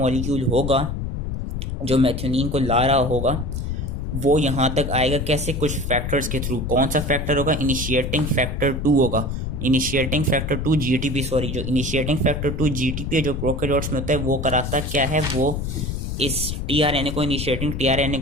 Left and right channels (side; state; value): left; noise; rumble, 4 dB below the sound